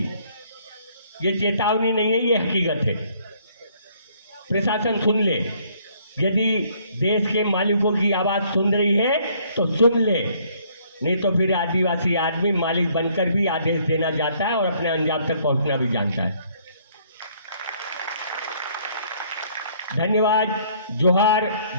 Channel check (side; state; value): both; inverted; correlation -0.63